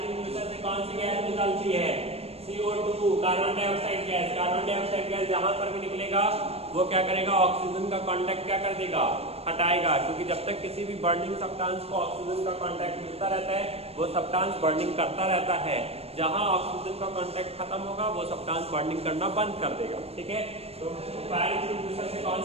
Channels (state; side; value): late; left; 0.29 ms